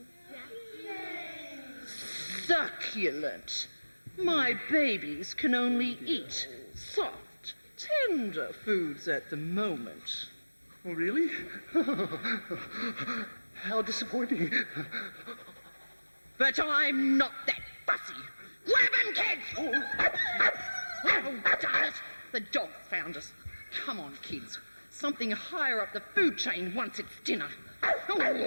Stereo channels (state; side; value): inverted; both; correlation -1.00